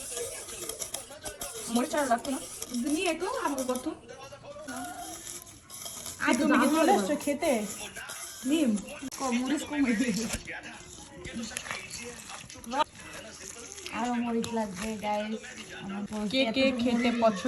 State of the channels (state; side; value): identical; both; correlation 1.00